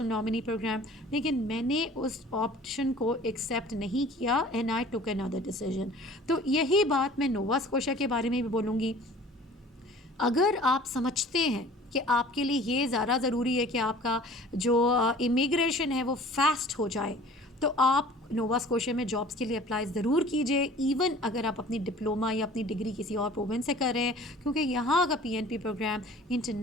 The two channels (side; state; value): both; normal; correlation 0.47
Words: नॉमिनी प्रोग्राम। लेकिन मैंने उस ऑप्शन को एक्सेप्ट नहीं किया and I took another decision. तो यही बात मैं नोवा स्कोशिया के बारे में भी बोलूँगी। अगर आप समझते हैं कि आपके लिए ये ज़्यादा ज़रूरी है कि आपका जो इमिग्रेशन है वो फास्ट हो जाए, तो आप नोवा स्कोशिया में जॉब्स के लिए अप्लाई ज़रूर कीजिए, इवन अगर आप अपनी डिप्लोमा या अपनी डिग्री किसी और प्रोविंस से कर रहे हैं, क्योंकि यहाँ का PNP program